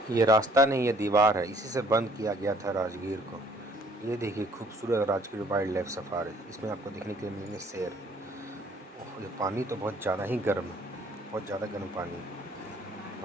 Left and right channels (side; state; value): both; normal; correlation 0.59